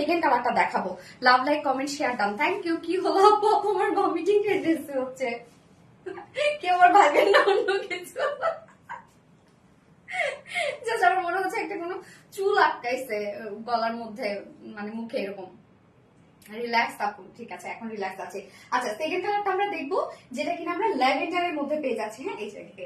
কালারটা দেখাবো। Love, like, comment, share done. Thank you. কি হলো আপু? আপু আমার ভমিটিং টেন্ডেন্সি হচ্ছে। কেউ আমার ভাবেন না অন্য কিছু। জাস্ট আমার মনে হচ্ছে একটা কোনো চুল আটকাইছে গলার মধ্যে, মানে মুখে এরকম। রিল্যাক্স আপু, ঠিক আছে এখন রিল্যাক্স আছে। আচ্ছা, সেকেন্ড কালারটা আমরা দেখবো, যেটা কিনা আমরা ল্যাভেন্ডারের মধ্যে পেয়ে যাচ্ছি। হ্যাঁ, এই জায়গায়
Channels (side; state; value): both; identical; correlation 1.00